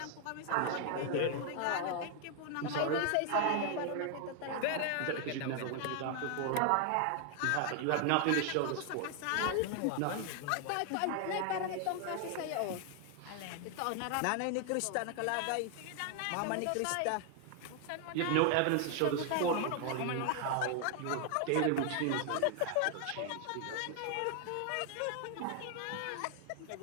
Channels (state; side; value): different; both; correlation 0.00